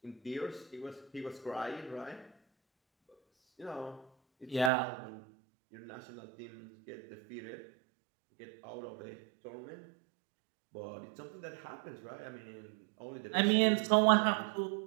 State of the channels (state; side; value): drops out; left; at 4.7 s